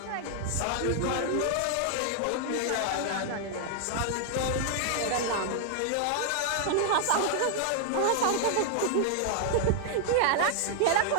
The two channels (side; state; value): both; different; correlation 0.00